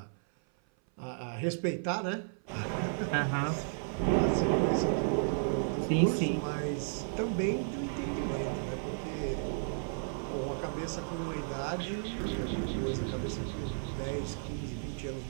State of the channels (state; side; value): silent; left; 56 dB below the other